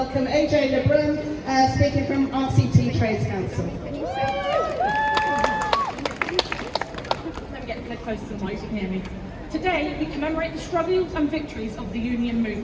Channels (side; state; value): both; identical; correlation 1.00